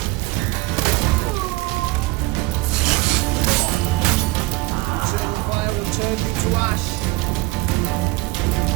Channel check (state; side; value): quieter; left; 21.2 dB